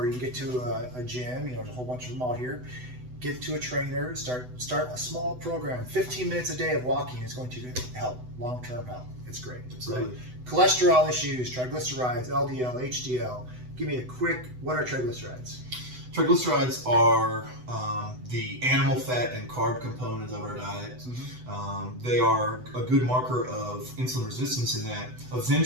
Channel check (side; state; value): left; late; 8.0 ms